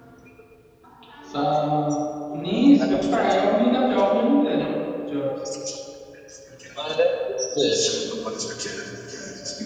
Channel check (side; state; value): both; identical; correlation 1.00